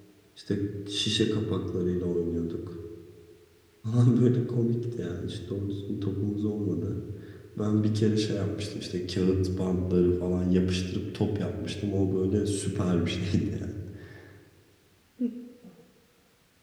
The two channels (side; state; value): both; identical; correlation 1.00